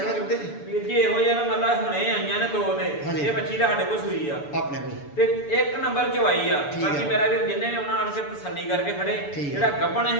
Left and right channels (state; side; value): late; right; 6.9 ms